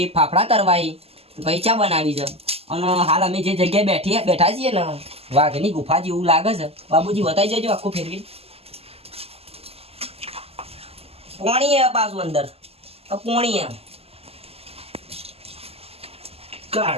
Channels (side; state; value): left; late; 0.29 ms